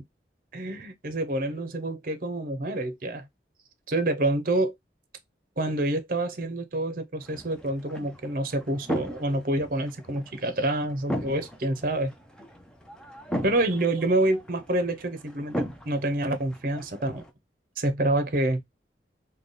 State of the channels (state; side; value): normal; both; correlation 0.34